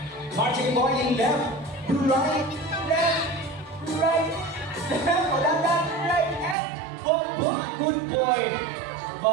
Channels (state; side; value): drops out; left; at 6.6 s